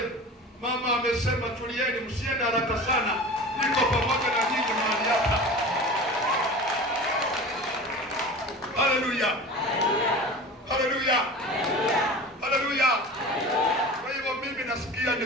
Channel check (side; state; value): both; normal; correlation 0.35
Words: mama amesema tulieni, msiende haraka sana, niko pamoja na nyinyi mahali hapa. Haleluya, haleluya, haleluya. Kwa hivyo mimi nasikia